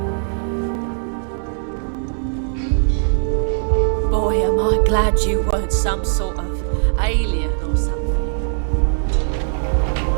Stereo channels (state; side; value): silent; left; digital silence